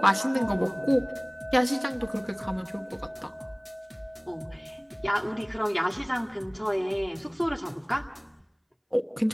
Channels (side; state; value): both; identical; correlation 1.00